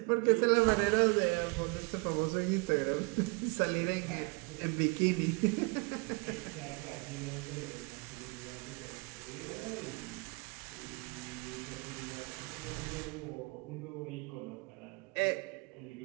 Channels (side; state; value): left; quieter; 30.3 dB